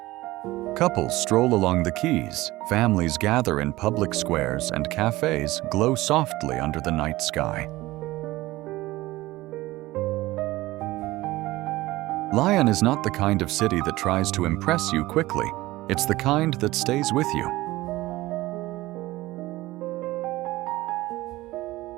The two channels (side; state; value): left; quieter; 18.4 dB